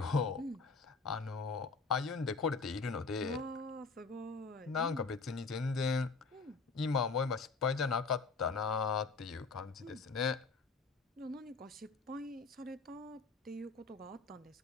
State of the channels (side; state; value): right; quieter; 4.4 dB